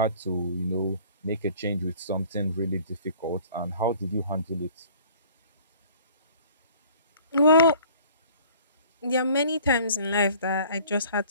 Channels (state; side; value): inverted; both; correlation -0.51